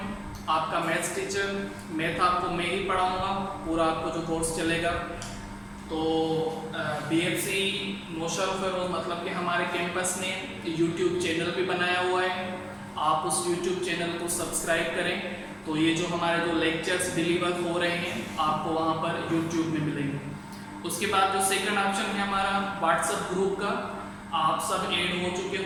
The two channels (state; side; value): identical; both; correlation 1.00